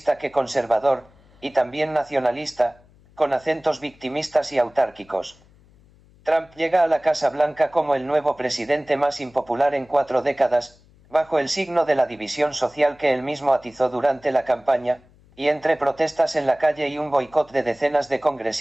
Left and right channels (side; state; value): left; noise; hum, 28 dB below the sound